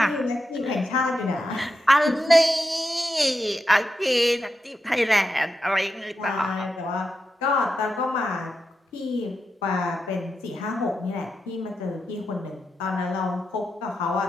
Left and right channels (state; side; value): normal; both; correlation 0.87